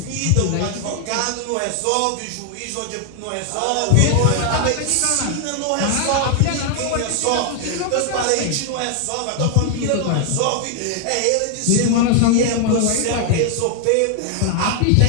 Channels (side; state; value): both; different; correlation 0.00